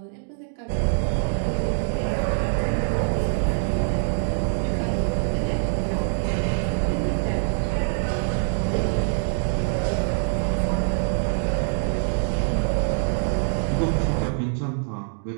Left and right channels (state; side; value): silent; left; 57 dB below the other